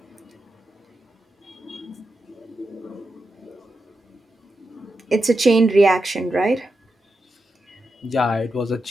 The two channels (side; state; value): both; normal; correlation 0.88